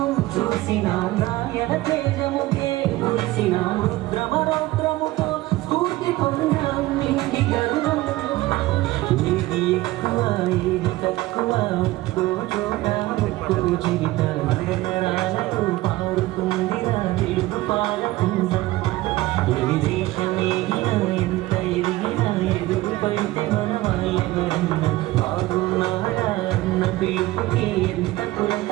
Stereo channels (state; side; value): quieter; left; 18.1 dB